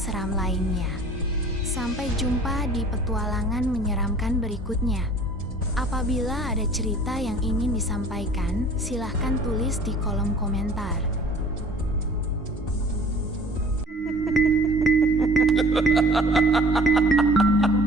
seram lainnya. Sampai jumpa di petualangan menyeramkan berikutnya. Apabila ada cerita yang ingin disampaikan, silahkan tulis di kolom komentar. Ha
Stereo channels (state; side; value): normal; both; correlation 0.48